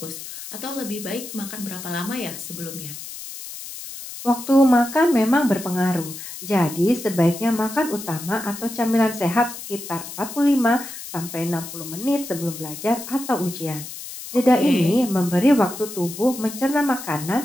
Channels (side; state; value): left; noise; hiss, 11 dB below the sound